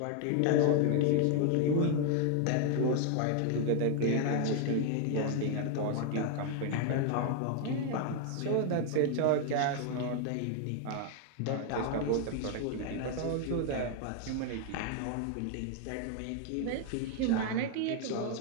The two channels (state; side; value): different; both; correlation 0.00